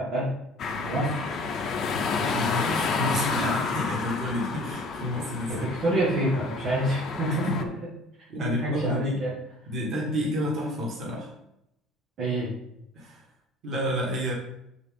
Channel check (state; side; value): normal; both; correlation 0.47